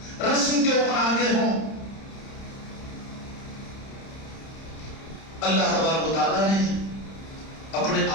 رسم کے اوپر آگے ہوں. اللہ تبارک و تعالیٰ نے اپنے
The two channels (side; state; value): right; late; 30 ms